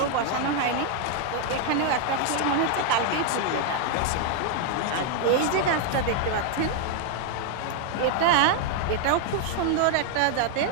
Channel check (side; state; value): both; different; correlation 0.00